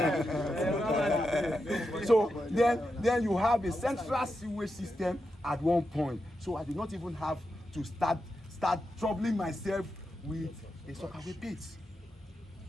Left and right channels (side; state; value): both; normal; correlation 0.87